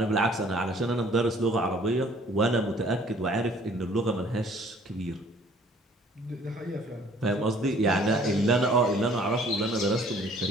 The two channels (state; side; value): normal; both; correlation 0.56